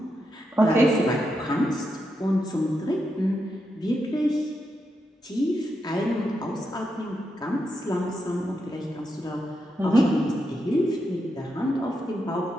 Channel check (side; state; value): both; normal; correlation 0.84